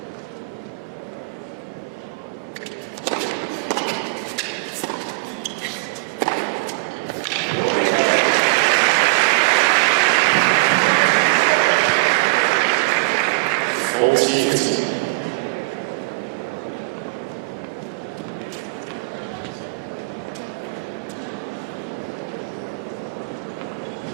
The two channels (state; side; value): quieter; left; 30.6 dB